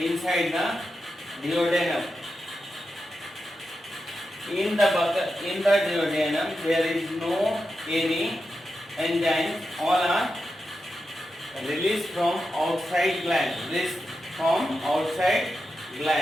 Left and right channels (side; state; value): both; normal; correlation 0.89